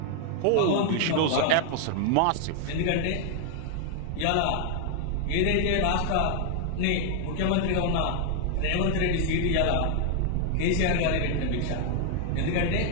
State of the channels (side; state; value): both; different; correlation 0.00